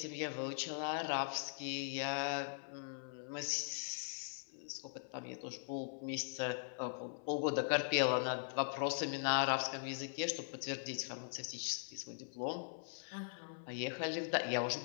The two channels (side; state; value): right; silent; 50 dB below the other